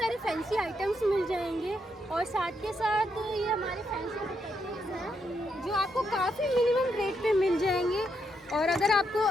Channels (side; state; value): both; normal; correlation 0.79